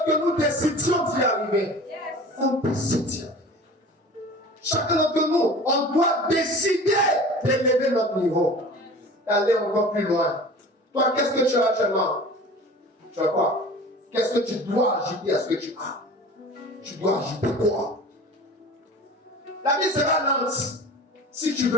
que nous décidions d'y arriver. On décide d'y arriver. Chacun d'entre nous, on doit décider d'élever notre niveau. D'aller encore plus loin. Toi, qu'est-ce que tu as actuellement? Tu as quoi? Qu'est-ce que tu dois ajouter à ce que tu as? Tu dois ajouter quoi? La vie sera lente si tu ne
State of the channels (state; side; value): normal; both; correlation 0.40